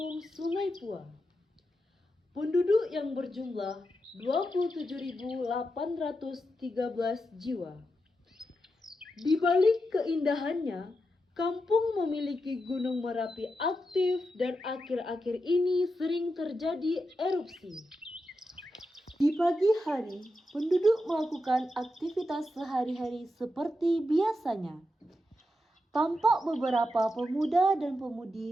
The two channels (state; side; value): normal; both; correlation 0.87